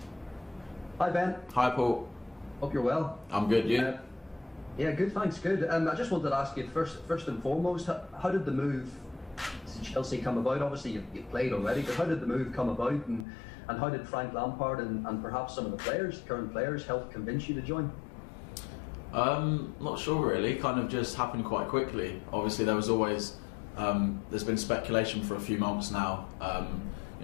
Hi Ben. Hi Paul. Hope you're well. I'm good, you? Yeah, good, thanks, good. I just wanted to ask you first and foremost, how did the move to Chelsea come about? Obviously you've played already, but how did the move come about, and how did Frank Lampard and perhaps some of the current players, help convince you to join? Not sure really, kind of just happened quite quickly. Obviously there was always, there's been speculation for a few months now,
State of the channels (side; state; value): right; drops out; at 13.2 s